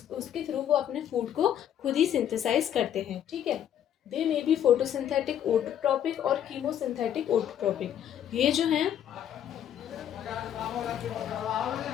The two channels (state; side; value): quieter; right; 10.0 dB